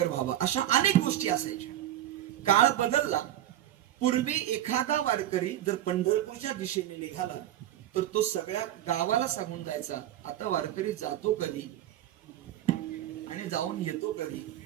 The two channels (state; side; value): quieter; left; 12.4 dB